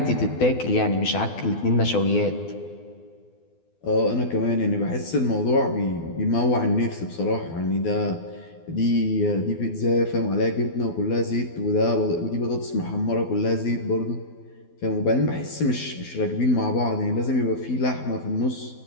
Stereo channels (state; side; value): late; right; 12 ms